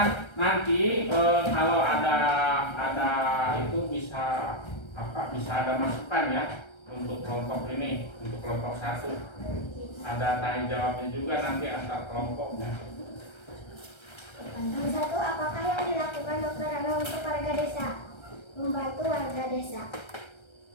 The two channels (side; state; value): right; late; 1.3 ms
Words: nanti kalau ada itu bisa ada masukan ya untuk kelompok ini, untuk kelompok 1 ada tanya jawabnya juga nanti antar kelompoknya. Yang 1, apakah yang dilakukan Dr. Rana untuk warga desa? Membantu warga desa.